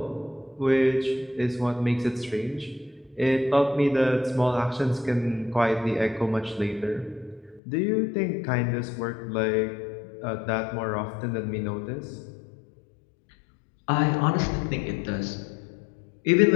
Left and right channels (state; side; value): drops out; right; at 7.6 s